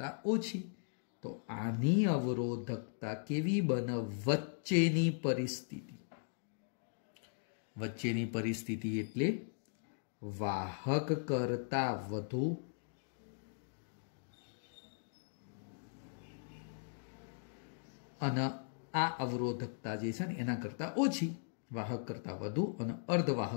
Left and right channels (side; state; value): right; silent; digital silence